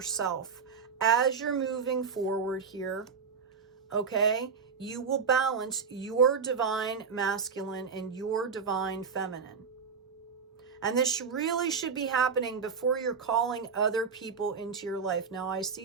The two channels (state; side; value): quieter; left; 5.8 dB